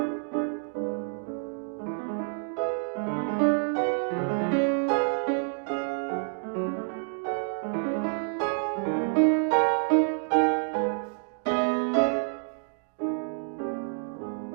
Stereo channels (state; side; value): silent; left; 59 dB below the other